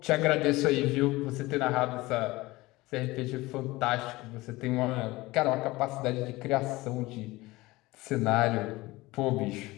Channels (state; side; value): quieter; right; 20.2 dB